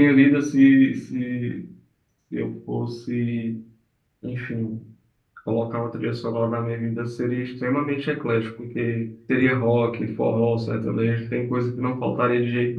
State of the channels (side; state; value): both; identical; correlation 1.00